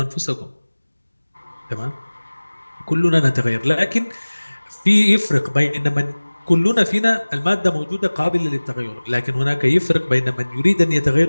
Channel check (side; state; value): both; inverted; correlation -1.00